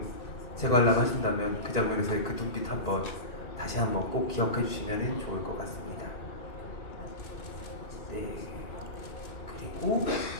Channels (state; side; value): late; right; 1.9 ms